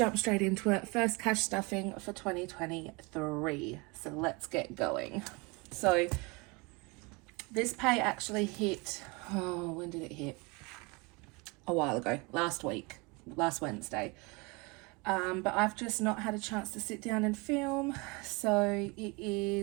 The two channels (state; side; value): quieter; left; 27.8 dB